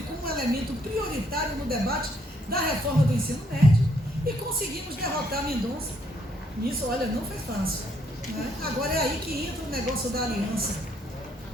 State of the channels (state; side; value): normal; both; correlation 0.70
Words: como um elemento prioritário no debate da reforma do ensino médio e conseguimos derrotar Mendonça. Isso, olha, não foi fácil. Né? Agora é aí que entra o negócio da aliança.